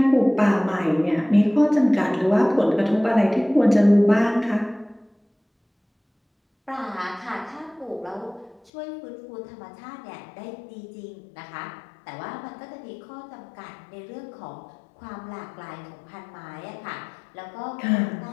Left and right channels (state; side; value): drops out; right; at 8.7 s